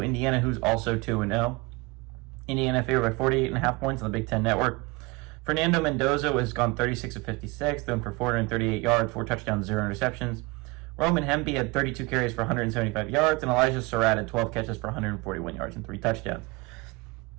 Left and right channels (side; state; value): left; quieter; 24.6 dB